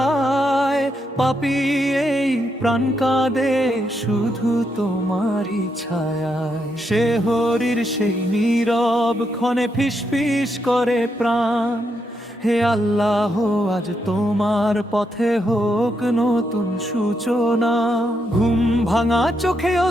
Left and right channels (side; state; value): both; normal; correlation 0.80